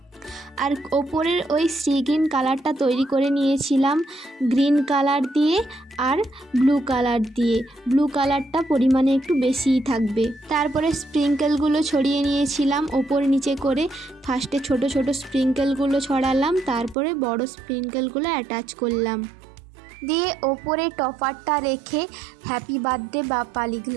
আর ওপরের ওই সি গ্রিন কালারটা তৈরি করে নিয়েছিলাম গ্রিন কালার দিয়ে আর ব্লু কালার দিয়ে। ব্লু কালারটা পরিমাণে একটু বেশিই থাকবে। তারপরে স্প্রিঙ্কেলগুলো ছড়িয়ে নিয়েছিলাম ওপর নিচে করে। ফার্স্টে ছোট ছোট স্প্রিঙ্কেলগুলো ছড়ালাম, তারপরে বড় স্প্রিঙ্কেলগুলো অ্যাটাচ করলাম, দিয়ে ওপরে টপারটা রেখে হ্যাপি বার্থডে বাপ্পা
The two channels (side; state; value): left; drops out; at 16.9 s